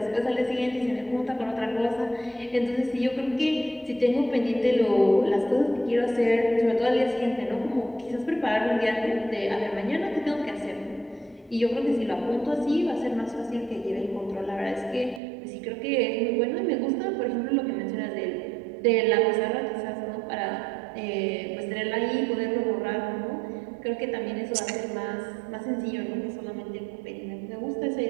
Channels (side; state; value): left; drops out; at 15.2 s